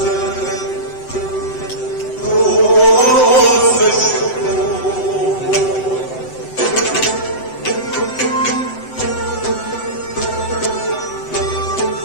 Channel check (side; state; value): right; late; 7.9 ms